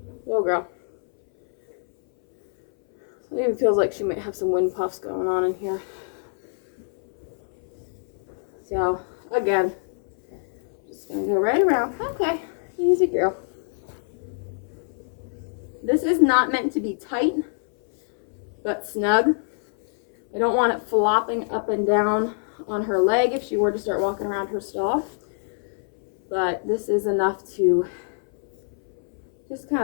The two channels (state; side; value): silent; right; 59 dB below the other